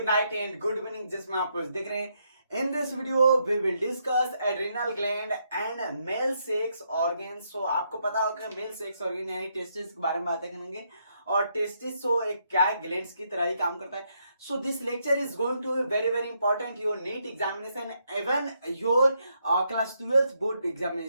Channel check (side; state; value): both; inverted; correlation -0.77